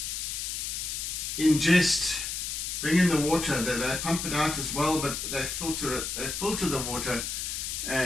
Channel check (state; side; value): noise; left; hiss, 3 dB below the sound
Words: ingest, bring in the water. They pump it out as well, but they filter it. They filter the water